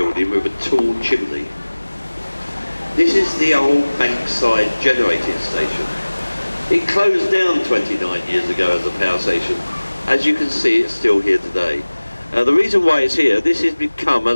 with a tall chimney. This is the old Bankside generating station. It closed down 29 years ago as a power station. As you can see, it's still here today. The reason why it's here, this has become a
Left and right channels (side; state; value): both; inverted; correlation -1.00